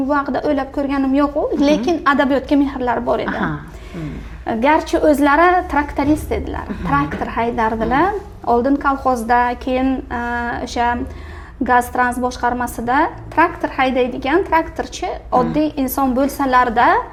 bu haqida o'ylab ko'rganim yo'q, lekin adabiyotga mehrlari bor edi. Garchi o'zlari traktorist edilar, traktor haydardilar. Oldin kolxozda, keyin o'sha gaz trans boshqarmasida traktor haydaydigan traktorchi oddiy inson bo'lsalarda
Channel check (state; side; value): identical; both; correlation 1.00